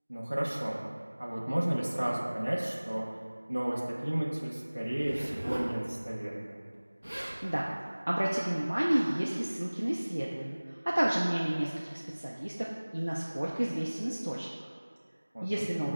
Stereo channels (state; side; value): inverted; both; correlation -1.00